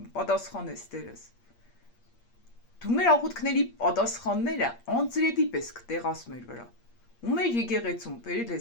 Տերս։ Դու մեր աղոթքների պատասխանները անձրևի պես կտեղաս մեր վրա։ Ու մեր եկեղեցում բերել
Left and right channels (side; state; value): right; late; 8.5 ms